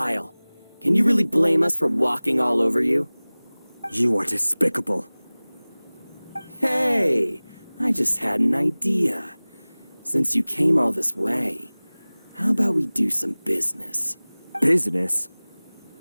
Can you really blame us for walking all over you? You are despicable. Hey, I just had an idea. Since you came all this way, how about we do some business? Business?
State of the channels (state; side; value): inverted; both; correlation -1.00